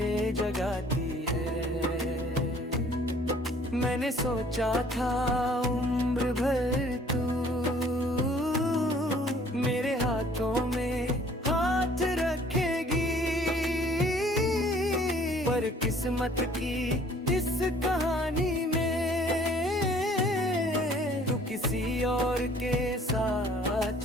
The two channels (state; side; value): normal; both; correlation 0.56